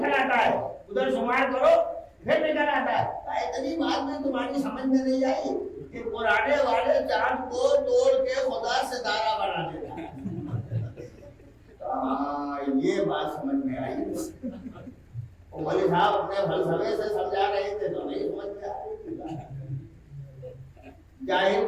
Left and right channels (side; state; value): both; identical; correlation 1.00